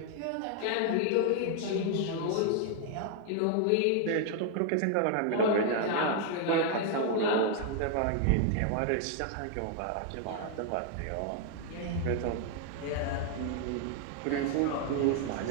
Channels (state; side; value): different; both; correlation 0.00